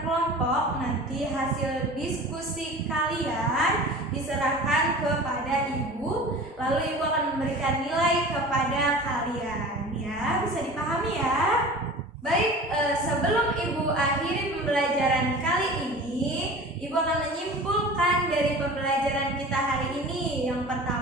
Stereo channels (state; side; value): normal; both; correlation 0.38